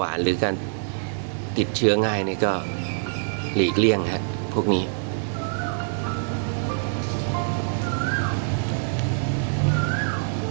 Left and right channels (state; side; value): silent; left; digital silence